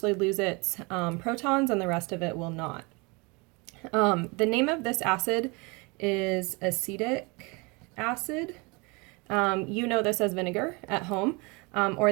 lose its protons and the rest of it will not. The name of this acid is acetic acid. You know this as vinegar at home,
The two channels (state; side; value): quieter; left; 28.3 dB